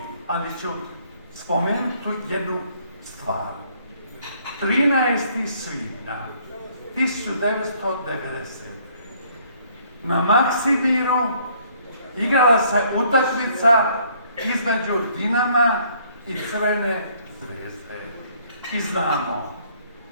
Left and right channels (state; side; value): inverted; both; correlation -0.63